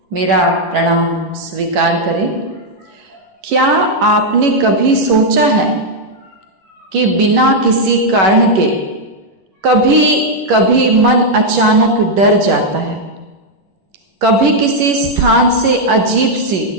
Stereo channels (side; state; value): left; late; 10 ms